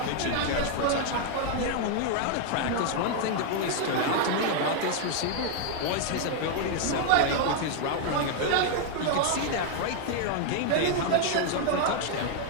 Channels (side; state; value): both; different; correlation 0.00